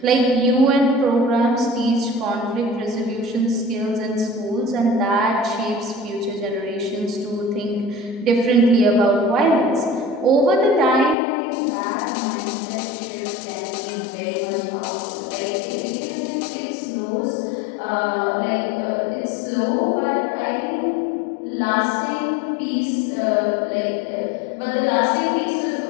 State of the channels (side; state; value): right; drops out; at 11.2 s